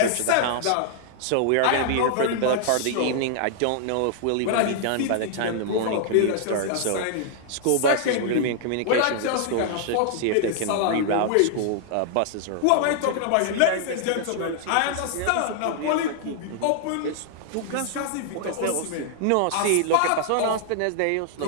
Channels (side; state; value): both; different; correlation -0.01